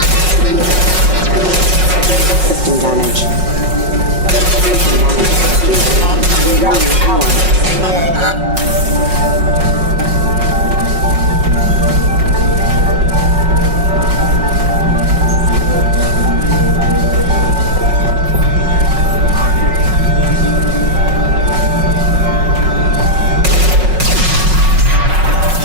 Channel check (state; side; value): late; left; 5.4 ms